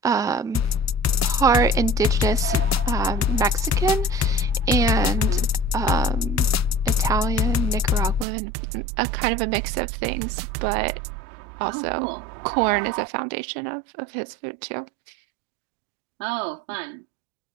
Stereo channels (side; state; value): left; drops out; at 8.2 s